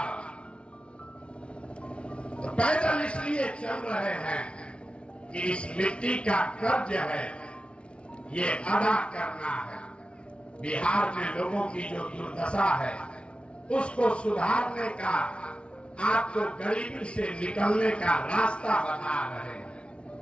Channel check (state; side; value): late; right; 0.059 ms